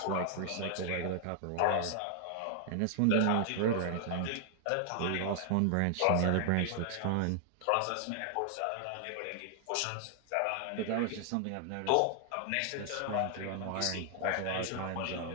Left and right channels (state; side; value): different; both; correlation 0.00